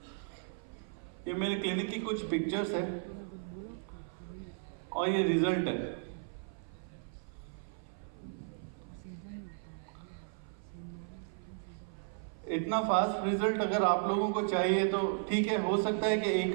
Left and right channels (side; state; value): left; silent; 54 dB below the other